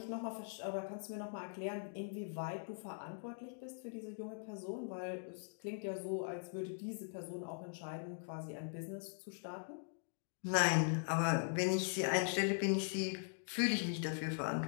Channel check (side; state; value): right; silent; digital silence